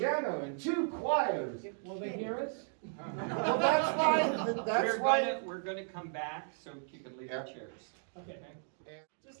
and 2 choirs. Will they hear us? Well, that's why, that's why. We're going to come back so you can leave your Yeah. chairs. Okay. Just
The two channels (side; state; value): left; silent; 54 dB below the other